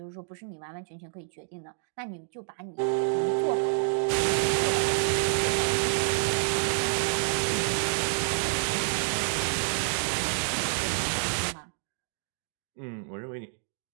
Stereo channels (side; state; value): left; silent; digital silence